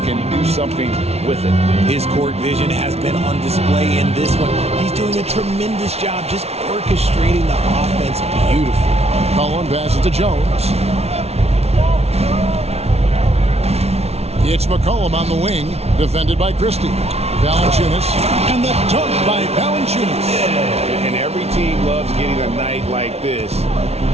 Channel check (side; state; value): left; late; 0.31 ms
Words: can do something with it. His court vision has been on display in this one. He's doing a tremendous job just orchestrating the offense beautifully. Collin passes to Jones. It's McCollum on the wing, defended by Christie. Valanciunas, and the dunk by Valanciunas. And every team loves getting a night like this